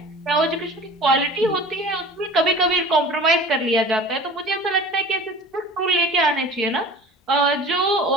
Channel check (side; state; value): both; normal; correlation 0.40